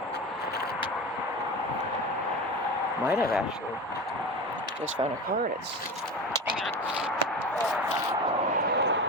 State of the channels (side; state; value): both; normal; correlation 0.27